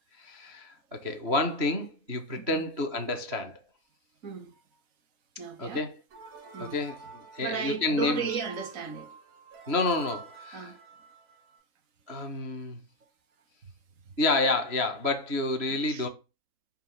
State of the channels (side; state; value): left; late; 3.1 ms